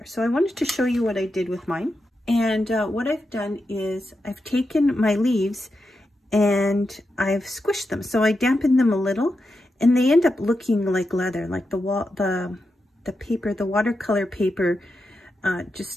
So I wanted to show you what I did with mine. And what I've done is I've taken my leaves and I've squished them. So I dampened them a little, and they end up looking like leather, like the paper, the watercolor paper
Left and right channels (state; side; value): normal; both; correlation 0.87